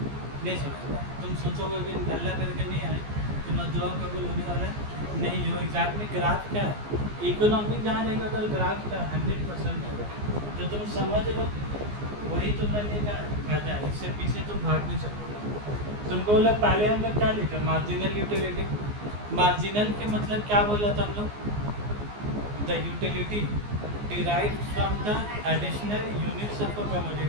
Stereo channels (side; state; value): left; late; 14 ms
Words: छोड़ेगा। तुम सोचोगे कि नल्ला करके नहीं आए तुम्हारा दुआ कबूल होने वाला है, नहीं हो। एग्जाम में ग्राफ क्या है? इकोनॉमिक जहाँ रहेगा तो ग्राफ का 100% होगा, तो तुम समझ लो वही तुम्हारे का फायदा है। इससे पीछे तुम भाग नहीं सकते। तुमको बोला पहले हम लोग क्या लिखा? Marginal utility. मार्जिनल के मतलब क्या बोला था हम लोग? The utility derived from the additional units of a